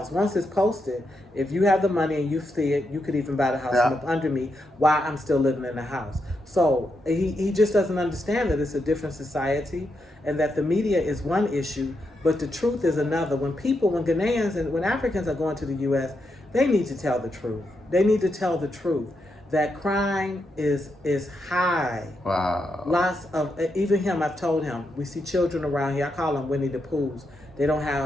once it's posted. If you have the money and you see it, you could even buy the house from up under me while I'm still living in the house. So he just doesn't understand that it's a different society and that the media is one issue, but the truth is another. When Ghanaians and when Africans are going to the U.S., they need to tell the truth. They need to tell the truth that crime is high. Wow. Lots of, even him, I've told him, we see children around here, I call them Winnie the Poohs. They don't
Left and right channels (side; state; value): both; normal; correlation 0.83